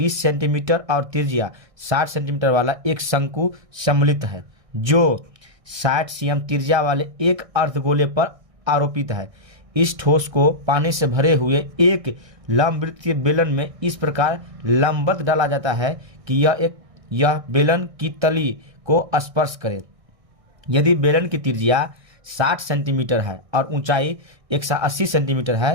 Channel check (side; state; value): left; late; 1.6 ms